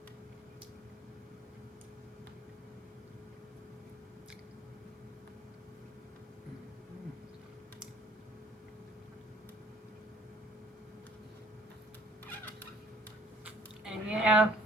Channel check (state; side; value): normal; both; correlation 0.56